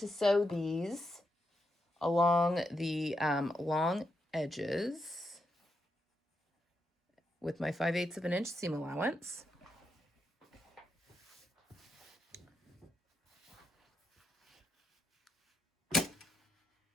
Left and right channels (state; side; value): normal; both; correlation 0.83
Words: sew these along the long edges with my 5/8 of an inch seam allowance.